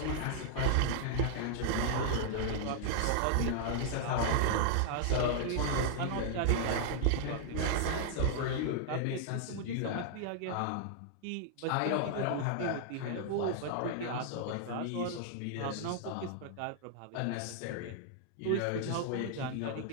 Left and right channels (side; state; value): both; different; correlation -0.01